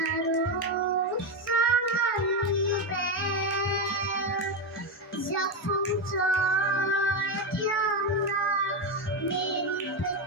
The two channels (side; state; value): both; normal; correlation 0.10